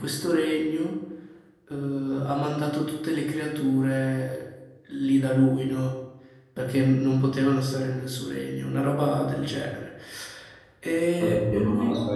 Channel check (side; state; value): both; identical; correlation 1.00